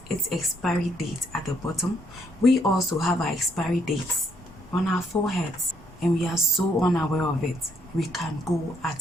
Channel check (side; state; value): both; normal; correlation 0.71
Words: its expiry date at the bottom, we also have our expiry dates on our foreheads, and we are so unaware of it. We can go at